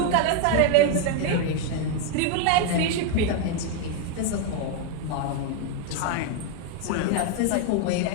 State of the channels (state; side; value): different; both; correlation 0.01